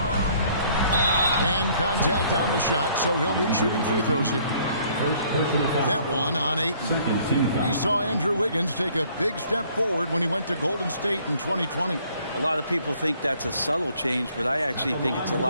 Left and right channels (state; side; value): inverted; both; correlation -0.61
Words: And contact on the shot, so he'll be shooting free throws here. That one on Ayton. We saw Andrew Wiggins take a big step forward when he went to Golden State in 2020. A lot of people think that's a subtle change, but I actually think it's a